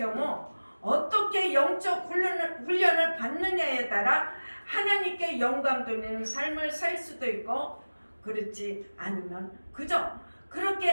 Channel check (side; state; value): both; inverted; correlation -1.00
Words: 어떻게 영적 훈련을 받느냐에 따라 하나님께 영광 돌리는 삶을 살 수도 있고, 그렇지 않으면 그저